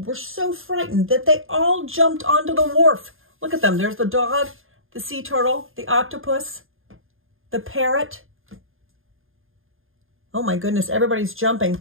were so frightened that they all jumped onto the wharf. Look at them. There's the dog, the sea turtle, the octopus, the parrot. Oh my goodness, everybody's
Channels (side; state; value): left; late; 0.60 ms